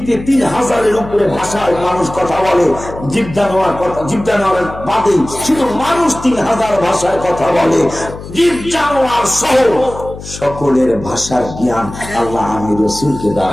3000-এর উপরে ভাষায় মানুষ কথা বলে, জীব জানোয়ার বাদে শুধু মানুষ 3000 ভাষায় কথা বলে, জীব জানোয়ার সহ সকলের ভাষার জ্ঞান আল্লাহ আমি রাসূলকে দান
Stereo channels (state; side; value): noise; left; hum, 13 dB below the sound